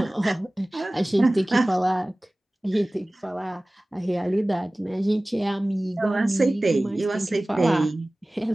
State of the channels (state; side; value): normal; both; correlation 0.98